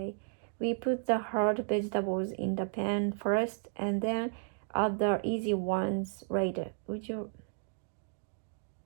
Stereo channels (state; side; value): silent; left; digital silence